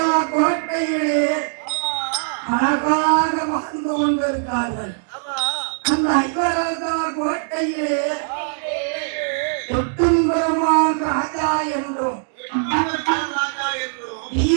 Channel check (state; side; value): silent; left; digital silence